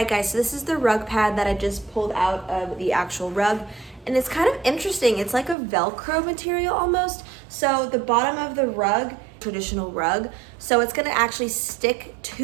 guys, so this is the rug pad that I just pulled out of the actual rug. And it's kind of interesting. It's like a Velcro material almost. So the bottom of the rug, traditional rug, so it's gonna actually stick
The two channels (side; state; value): left; drops out; at 5.6 s